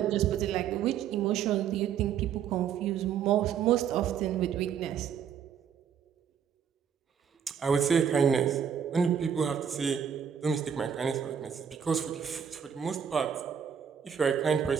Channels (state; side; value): quieter; left; 8.0 dB